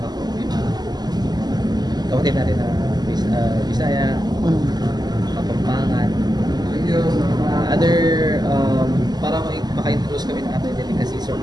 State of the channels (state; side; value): late; left; 0.20 ms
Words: Kapatid natin na Bisaya, Kapampangan, other para maka-introduce kami ng other delicacies or